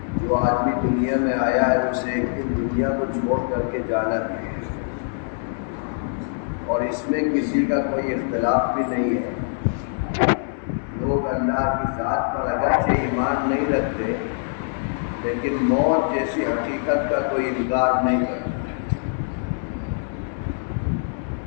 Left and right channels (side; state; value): right; silent; 63 dB below the other